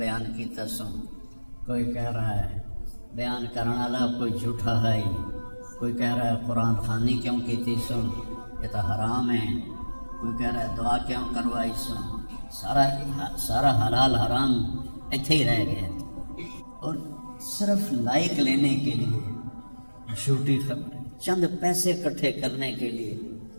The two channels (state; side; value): inverted; both; correlation -1.00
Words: کی تسوں، کوئی کہہ رہا ہے بیان کرنے والا کوئی جھوٹا ہے ہی، کوئی کہہ رہا ہے قرآن خوانی کیوں کی تھی سن، یہ تو حرام ہے، کوئی کہہ رہا ہے دعا کیوں کروائی سن. سارا حلال حرام ایتھے ہی رہ گیا، اور صرف لائک لینے کے لیے جھوٹی خبریں، چند پیسے اکٹھے کرنے کے لیے.